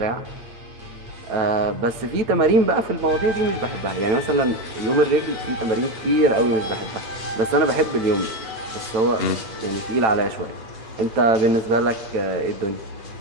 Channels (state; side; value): late; left; 8.3 ms